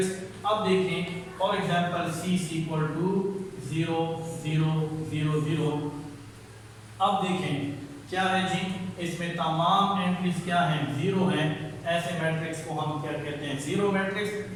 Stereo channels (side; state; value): both; identical; correlation 1.00